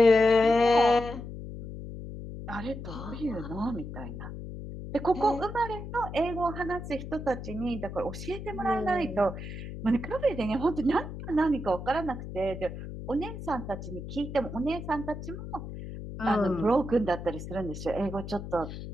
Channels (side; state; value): left; noise; hum, 9 dB below the sound